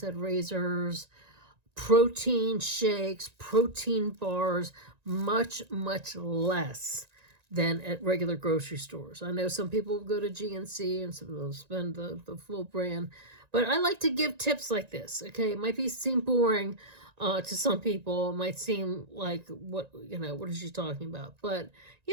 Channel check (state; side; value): late; left; 1.9 ms